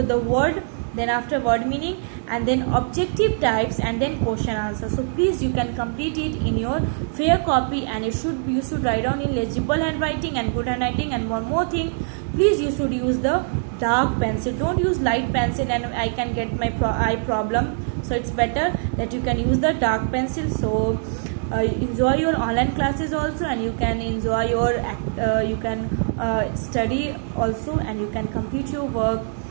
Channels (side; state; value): left; silent; 63 dB below the other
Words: the word, then after word meaning, and then objective types, and then question answer. So please, you can complete it in your fair copy, and you should write down in legible handwriting and good handwriting. And one more thing, please, you should use the dark pencil, don't use light pencil, and I can get my eye problem. So it's better that you can use the dark pencil. So enjoy your online classes also, and you can enjoy your you can study also, and you can complete your work